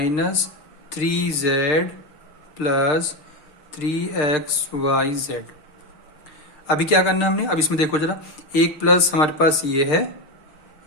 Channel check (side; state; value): right; late; 6.6 ms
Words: 3z plus 3xyz। अभी क्या करना है हमने, अब इसमें देखो जरा, एक प्लस हमारे पास ये है,